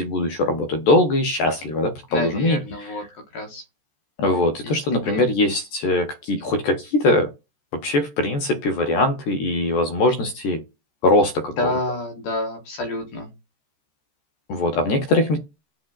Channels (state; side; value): late; right; 14 ms